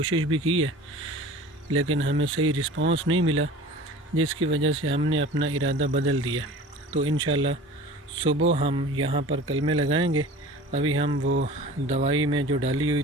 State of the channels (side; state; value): both; normal; correlation 0.41